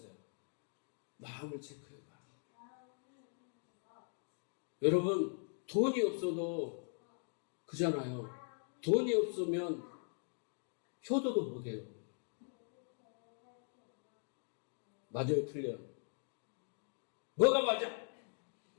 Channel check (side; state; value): right; silent; 51 dB below the other